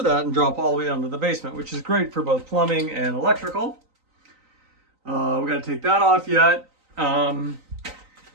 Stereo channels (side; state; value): left; late; 3.9 ms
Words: that and drop all the way down to the basement, which is great for both plumbing and electrical. We got to take that off yet. And